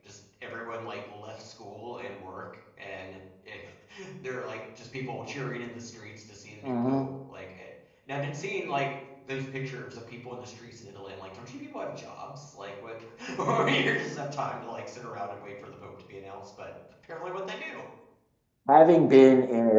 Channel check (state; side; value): identical; both; correlation 1.00